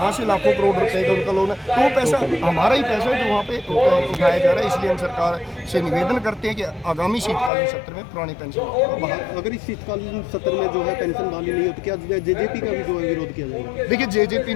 से लाखों करोड़ रुपए का उनका लोन है। तो वो पैसा हमारा ही पैसा है जो वहाँ पे उठाया जा रहा है। इसलिए हम सरकार से निवेदन करते हैं कि आगामी शीतकालीन सत्र में पुरानी पेंशन अगर इस शीतकालीन सत्र में जो है पेंशन बहाली नहीं होती, क्या JJP का भी जो है विरोध किया जाएगा? देखिए, JJP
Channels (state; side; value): drops out; right; at 7.5 s